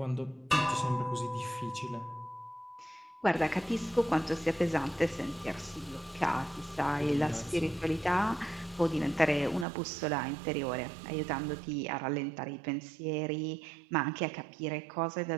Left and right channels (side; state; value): left; drops out; at 9.7 s